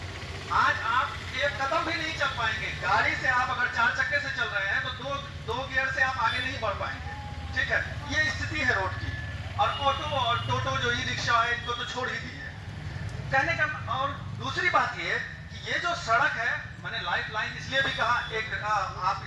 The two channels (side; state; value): both; identical; correlation 1.00